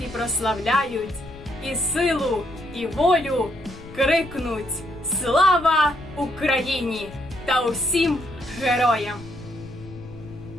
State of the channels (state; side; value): noise; left; rumble, 17 dB below the sound